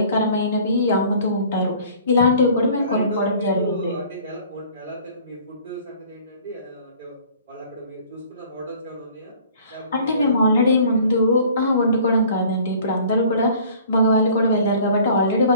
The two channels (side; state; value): both; inverted; correlation -0.51